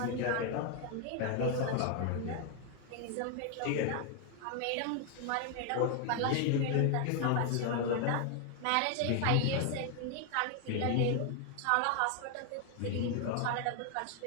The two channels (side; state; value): both; different; correlation 0.00